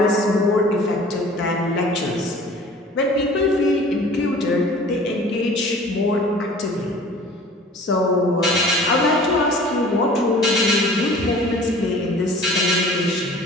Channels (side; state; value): both; normal; correlation 0.46